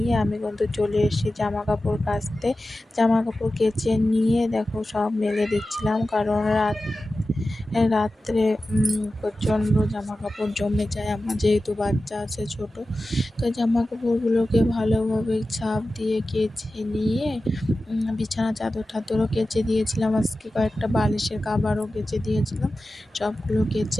আমি কিন্তু চলে এসেছি জামা কাপড় কাচতে। জামা কাপড় কেচে নিয়ে দেখো সব মেলে দিচ্ছিলাম, কারণ রাত্রে প্রচণ্ড জামা কাপড় জমে যায় আমার, যেহেতু বাচ্চা আছে ছোট। তো জামা কাপড়গুলোকে ভালোভাবে ছাপ দিয়ে কেচে নিয়ে বিছানা চাদর টাদরও কেচে দিয়েছিলাম, আজকে কয়েকটা বালিশের কভারও কেচে দিয়েছিলাম। সবগুলো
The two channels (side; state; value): both; normal; correlation 0.94